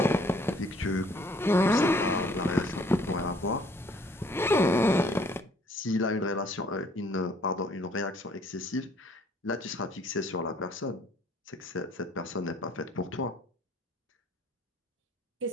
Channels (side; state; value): both; normal; correlation 0.59